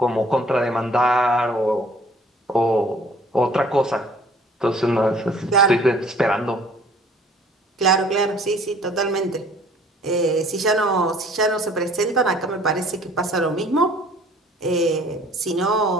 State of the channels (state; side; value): normal; both; correlation 0.54